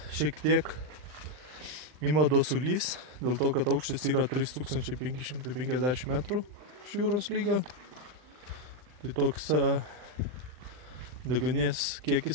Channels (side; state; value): left; late; 39 ms